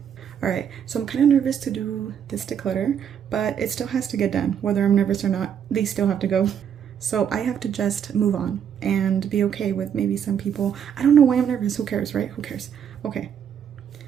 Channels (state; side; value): quieter; left; 8.4 dB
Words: All right, so I'm kind of nervous to do this declutter, but it still has to get done. Whether I'm nervous or not, these still have to go. So I have to just move on and be okay with maybe some people. I don't know why I'm nervous. Who cares, right? Who cares? Okay,